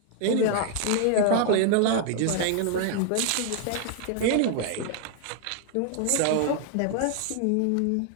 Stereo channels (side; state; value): both; different; correlation 0.00